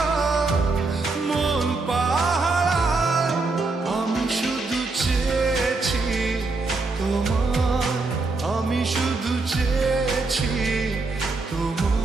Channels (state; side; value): quieter; left; 3.6 dB